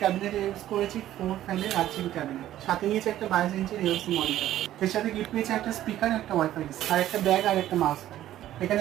ক্যাবিনেট ইউজ করেছি 4 ফ্যানের 8 GB ক্যাবিনেট, সাথে নিয়েছি একটা 22 ইঞ্চির এলসি মনিটর, এর সাথে গিফট পেয়েছি একটা স্পিকার, একটা ওয়াইফাই আর একটা ব্যাগ আর একটা মাউস। এখানে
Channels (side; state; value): left; quieter; 13.0 dB